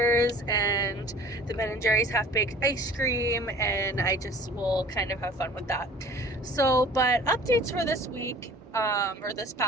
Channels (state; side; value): normal; both; correlation 0.47